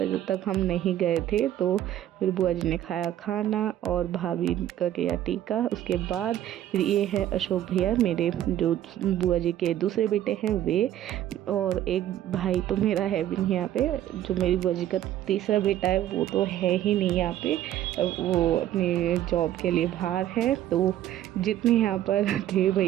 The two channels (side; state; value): left; quieter; 12.3 dB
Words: जब तक हम नहीं गए थे। तो फिर बुआ जी ने खाया खाना और भाभी का किया टीका। उसके बाद फिर ये है अशोक भैया, मेरे जो बुआ जी के दूसरे बेटे हैं वे, और एक भाई तो मेरा है भी नहीं यहाँ पे। जो मेरी बुआ जी का तीसरा बेटा है वो तो है ही नहीं यहाँ पे, वो अपनी जॉब के लिए बाहर है। तो जितने यहाँ पर थे